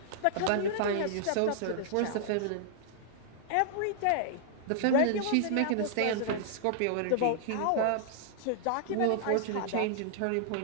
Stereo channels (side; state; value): both; different; correlation -0.01